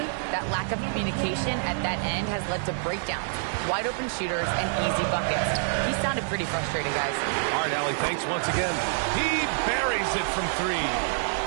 That lack of communication at that end has led to breakdowns, wide open shooters, and easy buckets. He sounded pretty frustrated, guys. All right, Allie, thanks once again. He buries it from 3.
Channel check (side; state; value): left; silent; digital silence